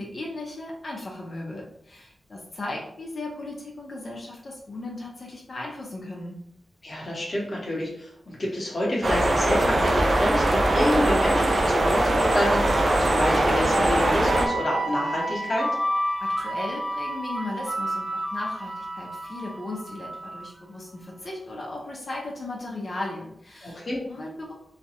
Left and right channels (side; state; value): both; normal; correlation 0.93